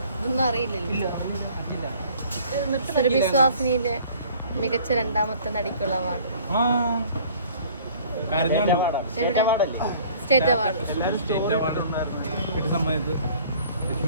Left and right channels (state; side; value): inverted; both; correlation -0.52